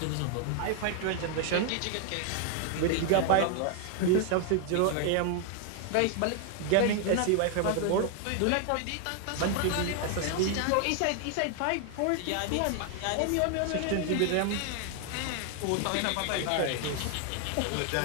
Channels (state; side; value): different; both; correlation 0.00